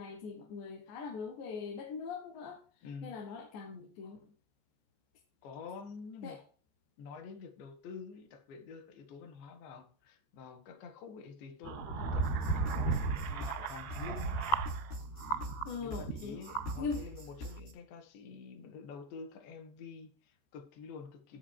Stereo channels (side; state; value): right; late; 13 ms